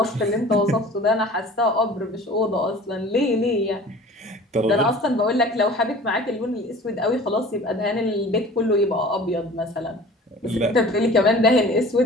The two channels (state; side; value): normal; both; correlation 0.44